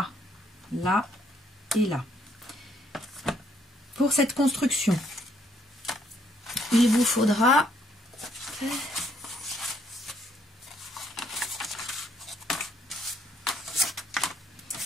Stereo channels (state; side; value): normal; both; correlation 0.69